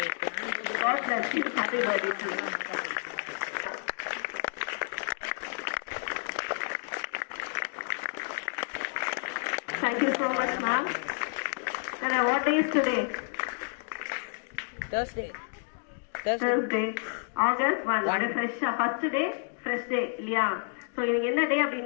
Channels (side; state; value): right; silent; digital silence